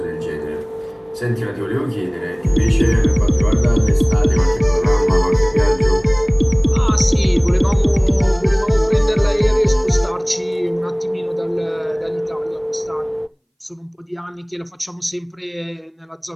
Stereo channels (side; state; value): both; identical; correlation 1.00